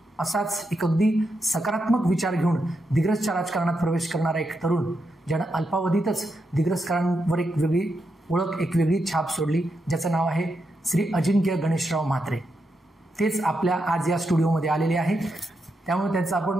असाच एक अगदी सकारात्मक विचार घेऊन दिग्रजच्या राजकारणात प्रवेश करणारा एक तरुण, ज्यानं अल्पावधीतच दिग्रजकरांवर एक वेगळी ओळख, एक वेगळी छाप सोडली, ज्याचं नाव आहे श्री अजिंक्य गणेशराव म्हात्रे. तेच आपल्या आज या स्टुडिओमध्ये आलेले आहे, त्यामुळे त्यांचं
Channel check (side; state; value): both; normal; correlation 0.84